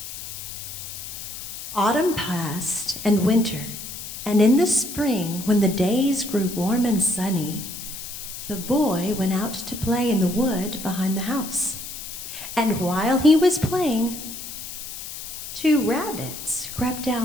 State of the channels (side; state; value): left; noise; hiss, 10 dB below the sound